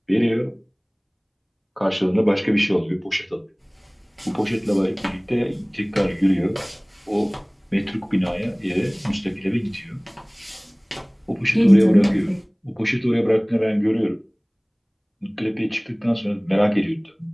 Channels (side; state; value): both; identical; correlation 1.00